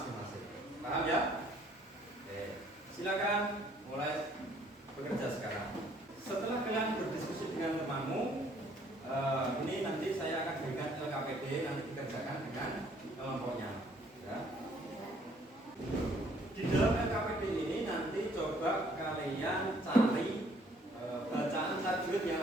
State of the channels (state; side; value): normal; both; correlation 0.62